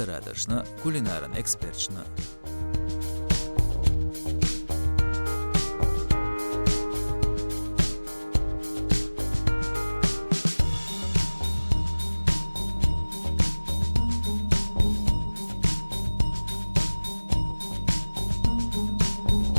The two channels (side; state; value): both; inverted; correlation -1.00